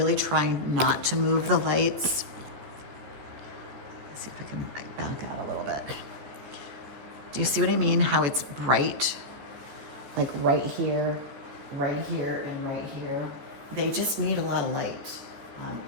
trying not to move the lights. Let's see if I can back out a little bit. Do you see what I mean? How it's bright, like right here, and right here. They just need a lot of light.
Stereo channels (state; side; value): late; left; 14 ms